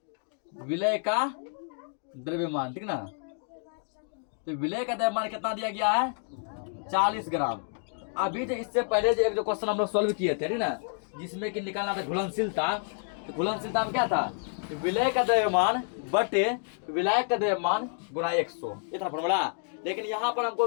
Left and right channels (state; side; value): silent; right; 58 dB below the other